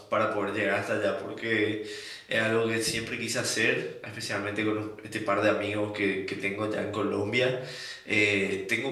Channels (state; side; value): identical; both; correlation 1.00